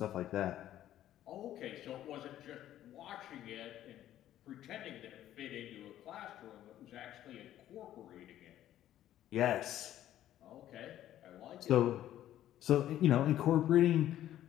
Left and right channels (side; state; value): right; quieter; 12.5 dB